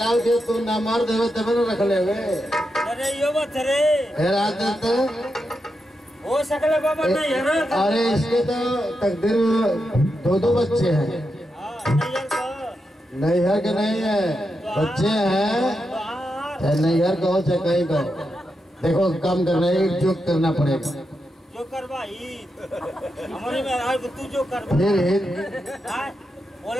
दे तू ना मर्द हो तब न रख ले। अरे यो बात रे फिर आते तो हो सकले बाबा नहीं है। अरे इसके तो तकदीर दो बच्चे हैं। नैहर के नहीं है बच्चे हैं। नैहर कहो चाहे कहीं कहो देखो काम करना है जो करना पड़ेगा जो करवाई हमारे में आज तू जो कर फिर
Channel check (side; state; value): both; normal; correlation 0.86